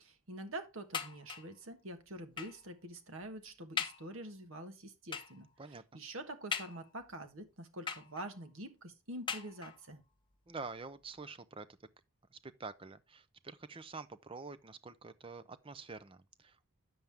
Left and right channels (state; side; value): normal; both; correlation -0.03